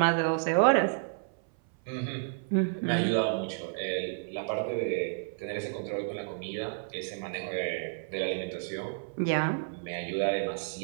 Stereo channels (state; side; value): silent; left; 57 dB below the other